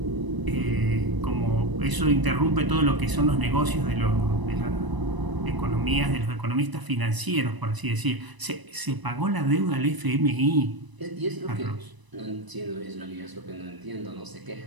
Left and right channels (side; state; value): left; late; 1.0 ms